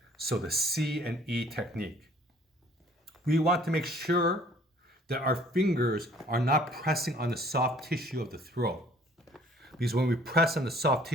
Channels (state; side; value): normal; both; correlation 0.56